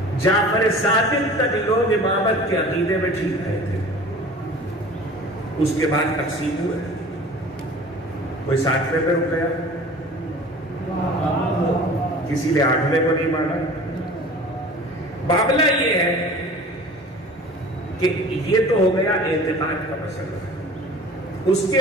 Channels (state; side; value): normal; both; correlation 0.43